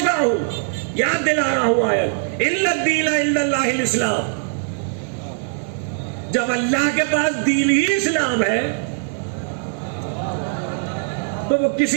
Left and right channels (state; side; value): silent; left; digital silence